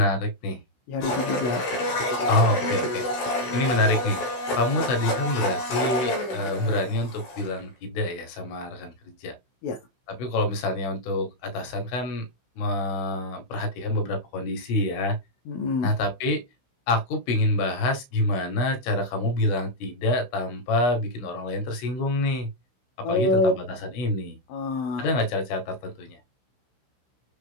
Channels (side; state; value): right; late; 16 ms